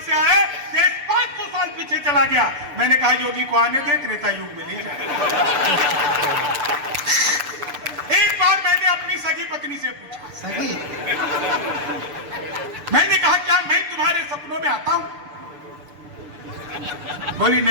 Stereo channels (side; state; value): left; late; 6.8 ms